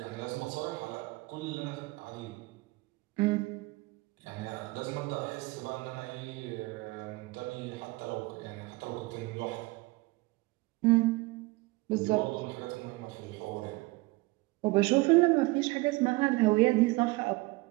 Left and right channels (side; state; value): left; quieter; 22.6 dB